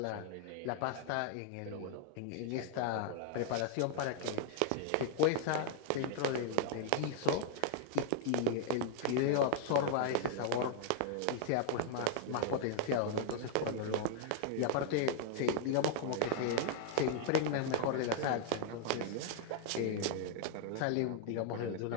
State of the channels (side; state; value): both; different; correlation 0.00